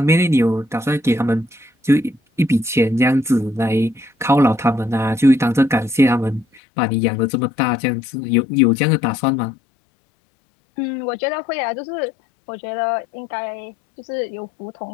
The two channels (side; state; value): right; drops out; at 6.6 s